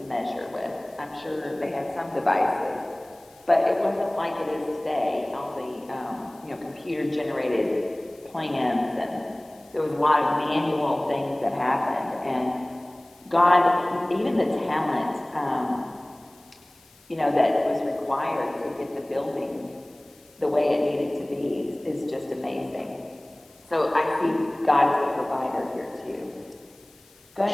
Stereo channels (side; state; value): left; noise; hiss, 29 dB below the sound